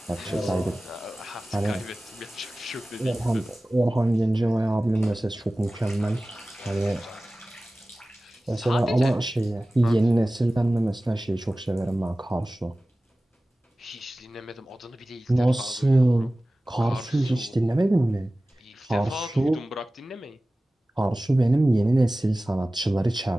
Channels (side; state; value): both; normal; correlation 0.97